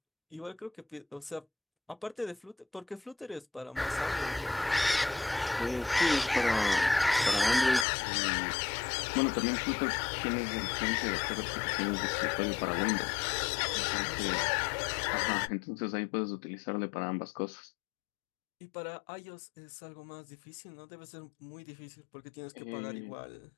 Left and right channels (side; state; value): right; drops out; at 7.9 s